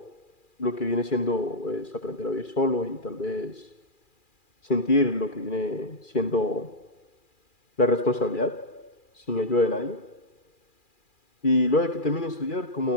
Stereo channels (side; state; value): right; late; 2.4 ms